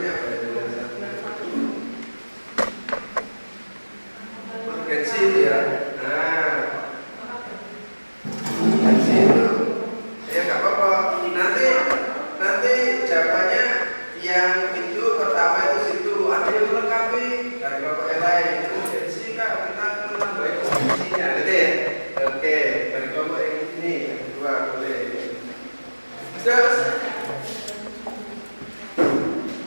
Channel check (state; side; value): inverted; both; correlation -1.00